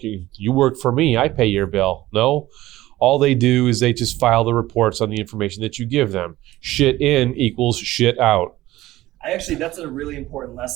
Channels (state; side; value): quieter; left; 16.4 dB